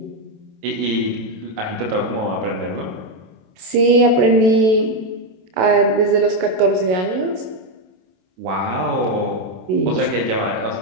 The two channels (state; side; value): late; left; 27 ms